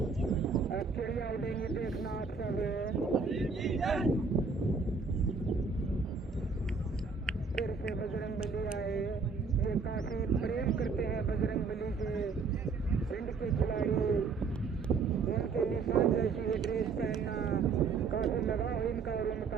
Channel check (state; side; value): quieter; left; 4.9 dB